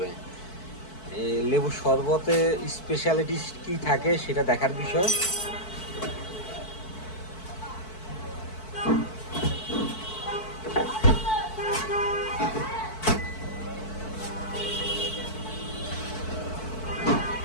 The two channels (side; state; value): right; late; 4.6 ms